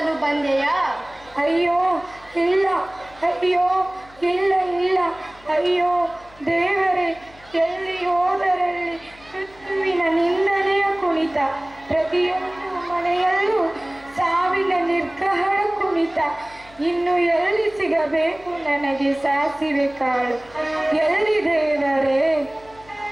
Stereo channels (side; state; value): left; noise; hum, 25 dB below the sound